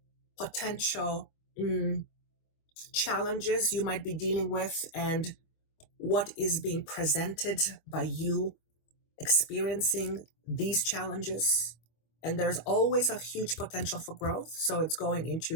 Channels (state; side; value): late; right; 25 ms